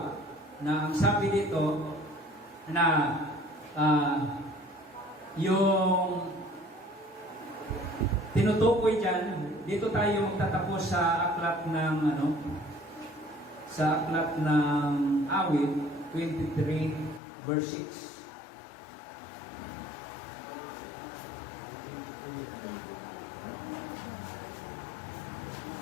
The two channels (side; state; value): right; drops out; at 17.2 s